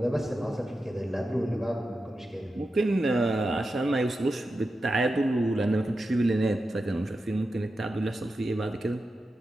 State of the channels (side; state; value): both; normal; correlation 0.90